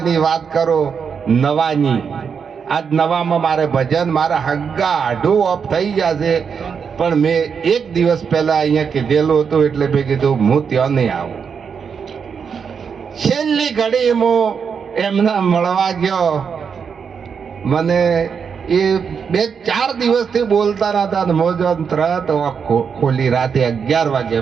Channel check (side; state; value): left; quieter; 6.5 dB